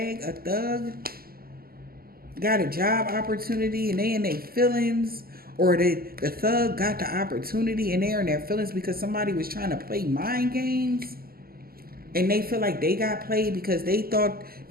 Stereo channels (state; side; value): late; left; 0.43 ms